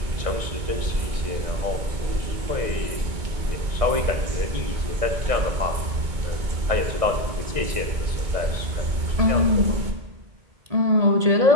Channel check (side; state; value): left; late; 2.2 ms